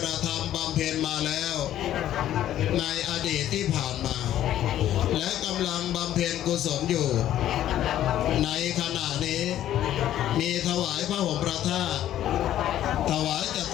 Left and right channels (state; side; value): quieter; right; 12.2 dB